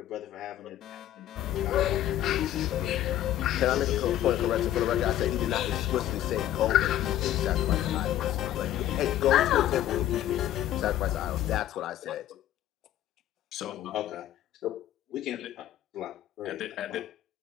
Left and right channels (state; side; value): quieter; right; 12.4 dB